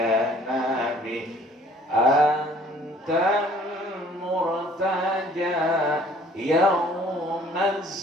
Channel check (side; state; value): both; normal; correlation 0.55